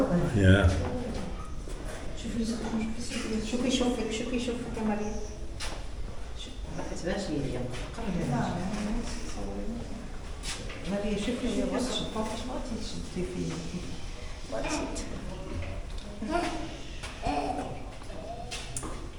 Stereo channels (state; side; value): identical; both; correlation 1.00